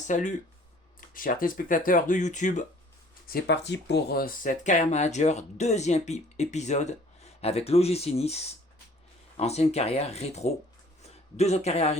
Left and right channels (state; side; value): normal; both; correlation 0.54